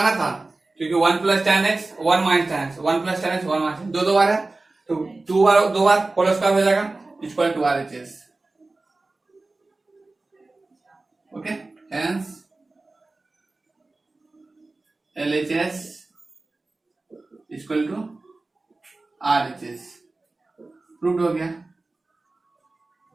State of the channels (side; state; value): left; quieter; 3.3 dB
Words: था, क्योंकि 1 plus tan x, 1 minus tan x, 1 plus tan x, 1 minus, दो बार है, तो दो बार होल स्क्वायर हो जाएगा, equal to RHS, okay, hence LHS equal to RHS, proved हो गया।